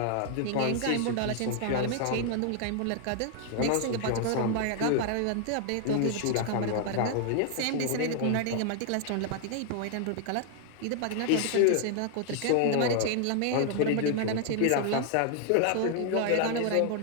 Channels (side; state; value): both; different; correlation 0.00